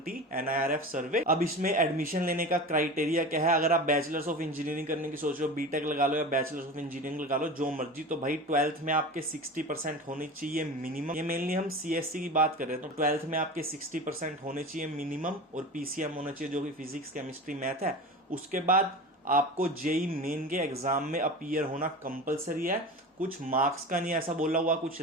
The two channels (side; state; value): both; normal; correlation 0.31